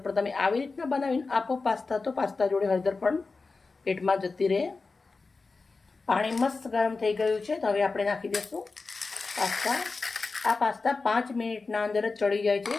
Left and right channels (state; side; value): quieter; right; 4.0 dB